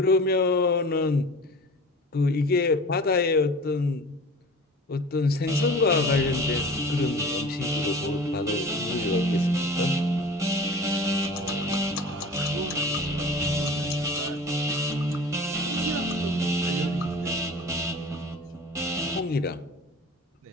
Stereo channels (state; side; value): normal; both; correlation 0.40